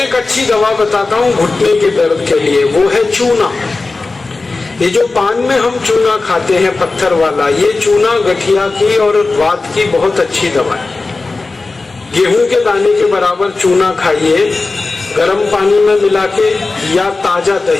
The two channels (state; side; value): quieter; right; 3.6 dB